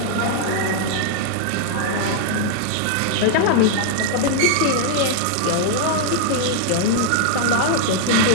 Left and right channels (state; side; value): different; both; correlation -0.01